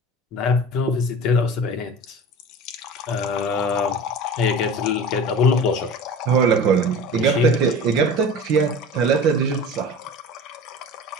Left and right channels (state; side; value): normal; both; correlation 0.36